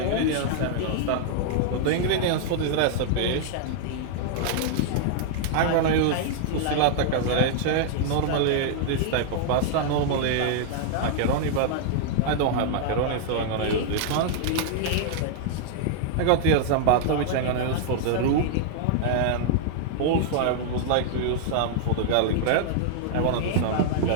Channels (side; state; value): both; different; correlation -0.01